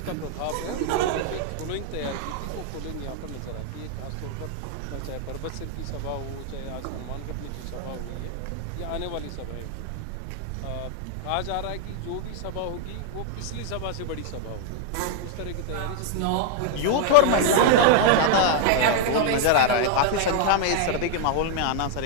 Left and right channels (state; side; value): different; both; correlation 0.00